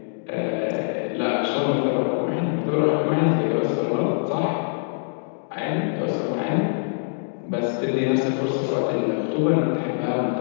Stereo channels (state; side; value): silent; right; digital silence